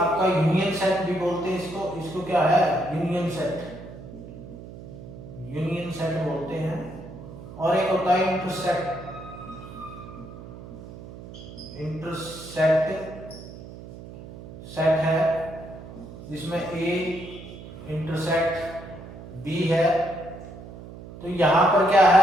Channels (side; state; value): right; noise; hum, 14 dB below the sound